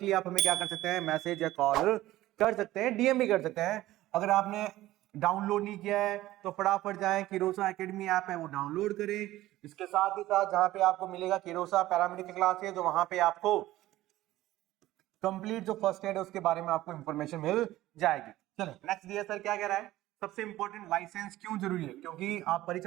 आप हमें क्या कर सकते हैं, मैसेज या कॉल कर सकते हैं, डीएम भी कर सकते हैं। अगर आपने डाउनलोड नहीं किया है तो फटाफट जाएं, किरोसा एकेडमी ऐप है वो डाउनलोड करें। इसके साथ ही साथ जहां पे आपको मिलेगा किरोसा पैरामेडिकल क्लासेस, तो वहां पे आपको कंप्लीट जो फर्स्ट एड है उसके बारे में आपको इंफॉर्मेशन मिल जाएगी। चलो नेक्स्ट दिया सर क्या कह रहा है। सबसे इंपॉर्टेंट, लाइसेंस क्यों जरूरी है? क्योंकि आप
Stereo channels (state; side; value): quieter; left; 15.9 dB